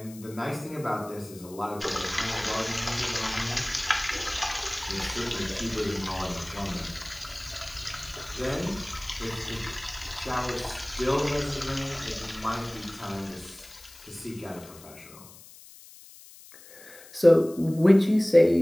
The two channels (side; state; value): left; noise; hiss, 19 dB below the sound